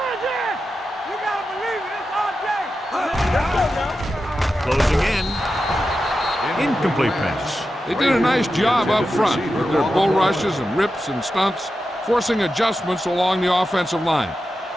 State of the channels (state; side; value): normal; both; correlation 0.91